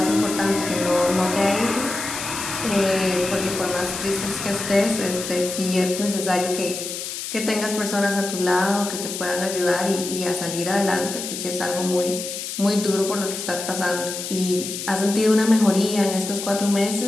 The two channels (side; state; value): left; noise; hiss, 6 dB below the sound